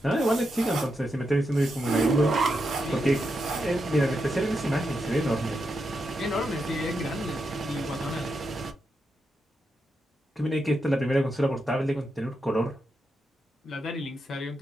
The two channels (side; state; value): both; normal; correlation 0.85